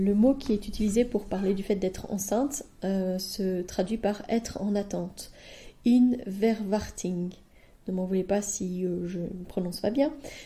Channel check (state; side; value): identical; both; correlation 1.00